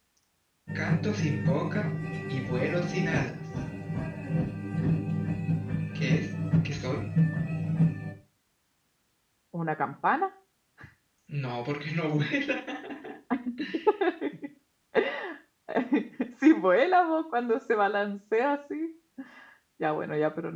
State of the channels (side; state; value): both; identical; correlation 1.00